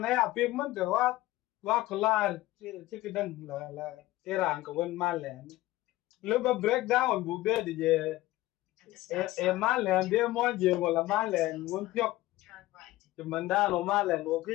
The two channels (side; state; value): right; quieter; 17.3 dB